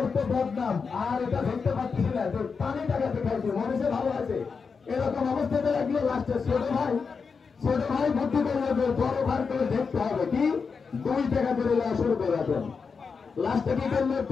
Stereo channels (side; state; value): right; quieter; 5.3 dB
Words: তো বদনাম, আর এটা ধরতে পারতেছি না, তো পানি টাকাতে খাইছে, মনে ভালো আছে। এরকম অবস্থাতে লাগলো। লাস্টে ছোট ভাই বুদ্ধি করলো যে বড় ভাই করে দেখতে হবে কি 2 টাকা করে শুরু করে দেন। লাস্টে কি করলো,